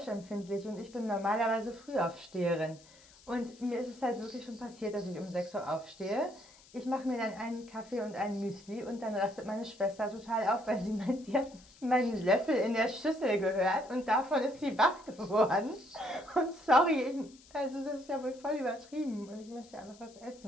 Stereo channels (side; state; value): left; noise; hiss, 24 dB below the sound